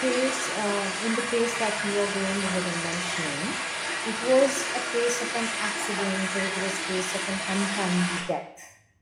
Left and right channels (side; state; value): both; identical; correlation 1.00